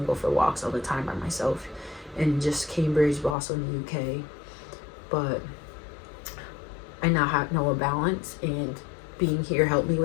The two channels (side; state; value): right; drops out; at 3.4 s